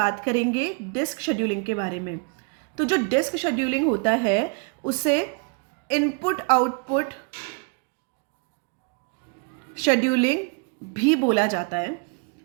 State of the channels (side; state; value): left; quieter; 37.3 dB